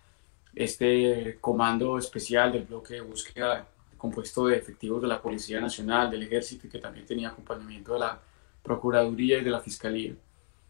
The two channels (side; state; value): right; silent; 57 dB below the other